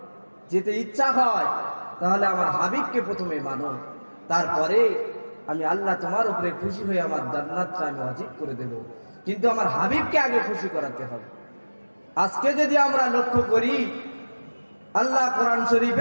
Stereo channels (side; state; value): both; inverted; correlation -1.00